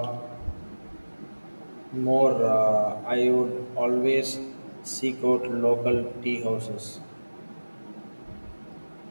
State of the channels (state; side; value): inverted; both; correlation -1.00